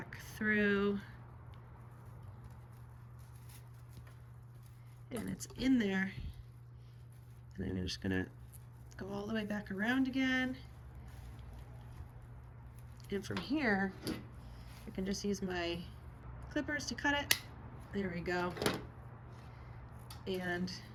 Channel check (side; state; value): both; identical; correlation 1.00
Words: through, and it's in there, and I'm just going to go all the way back around again, and from here I can just use my clippers to cut it. There we go, and